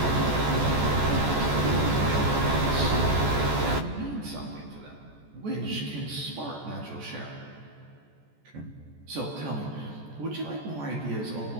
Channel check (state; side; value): late; left; 14 ms